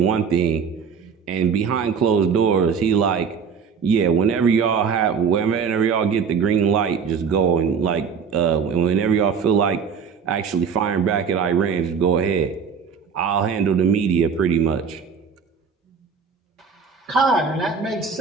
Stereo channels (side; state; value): left; quieter; 6.3 dB